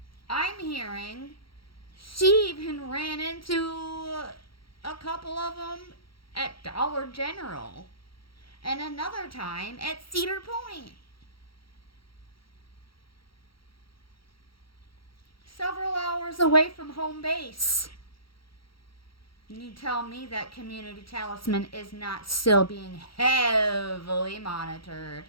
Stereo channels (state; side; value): late; right; 0.74 ms